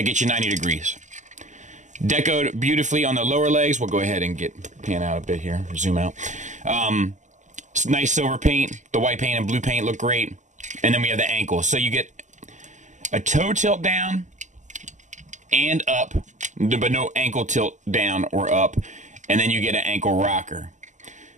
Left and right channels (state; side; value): late; left; 0.35 ms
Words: gets you 90 degrees. Decoed beautifully on the lower legs. We'll go ahead and pan out a bit here, zoom out. Nice silver paint. The white paint and blue paint look great. And then we have the ankle. So you get a toe tilt down and up, but no ankle tilt down or up. And then you get an ankle rocker.